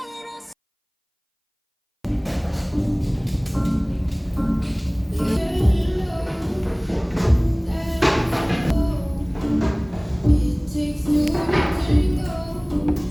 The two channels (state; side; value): identical; both; correlation 1.00